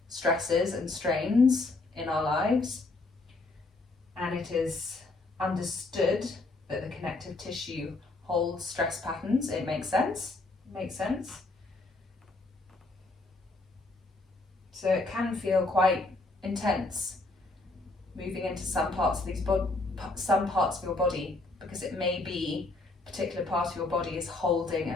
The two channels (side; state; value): right; quieter; 3.2 dB